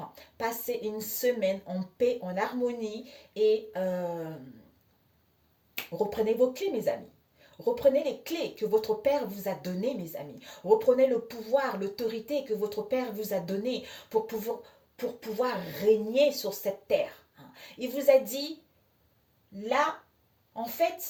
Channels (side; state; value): both; identical; correlation 1.00